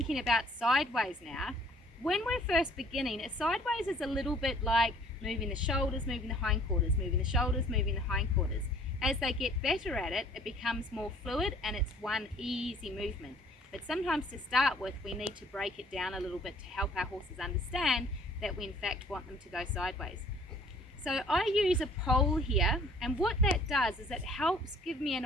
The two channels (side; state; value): both; normal; correlation 0.56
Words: about sideways now, when we're first beginning, a sideways is a little bit like moving the shoulders, moving the hindquarters, moving the shoulders, moving the hindquarters. As they get better at it, it becomes more fluid and it's one easy movement. But sometimes to start with, we need to break it down a little bit to help our horses understand that we in fact want them to go sideways. So I use a pole here, and what that does is it helps give me